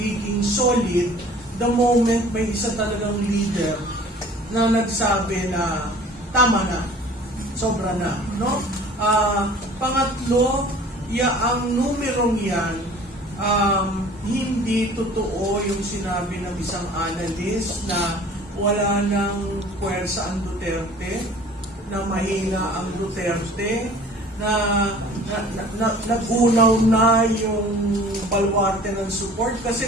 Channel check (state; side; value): normal; both; correlation 0.48